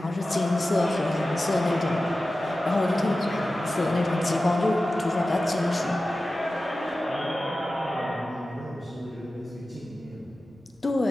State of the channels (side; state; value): both; normal; correlation 0.95